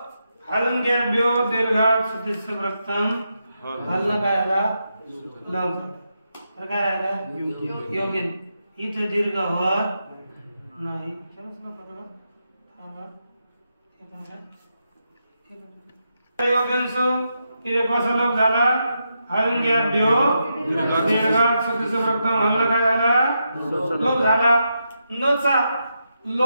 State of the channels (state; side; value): inverted; both; correlation -0.84